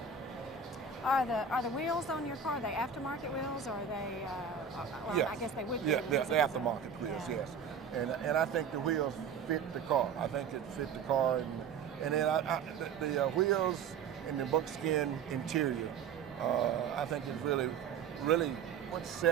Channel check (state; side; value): quieter; left; 6.4 dB